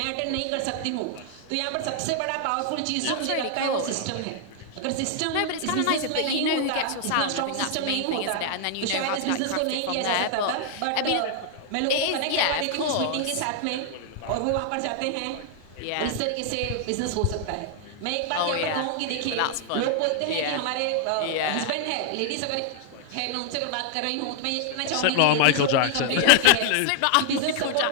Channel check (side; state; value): both; different; correlation 0.00